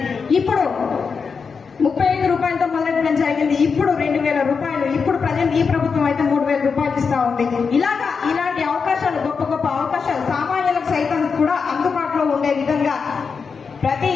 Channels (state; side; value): quieter; right; 5.5 dB